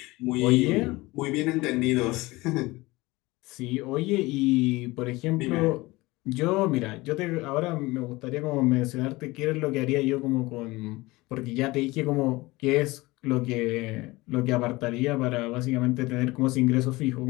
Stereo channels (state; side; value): quieter; right; 21.3 dB